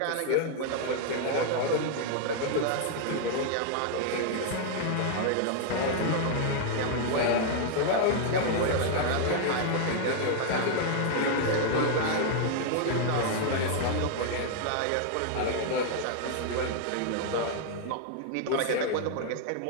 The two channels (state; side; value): different; both; correlation 0.00